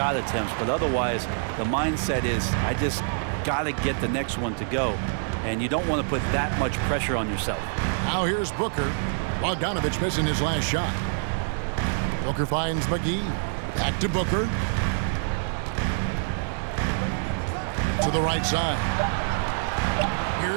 attempts, but otherwise the mindset is, I just got to get the next one to go. And you don't want to put that much pressure on yourself. Now here's Booker. Bogdanovich missing his last shot. Booker finds McGee. Back to Booker. To the right side.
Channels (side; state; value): left; silent; digital silence